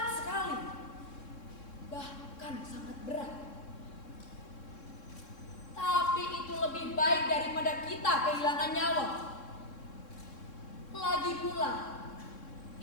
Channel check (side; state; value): right; late; 3.6 ms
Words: sekali, bahkan sangat berat. Tapi itu lebih baik daripada kita kehilangan nyawa. Lagi pula,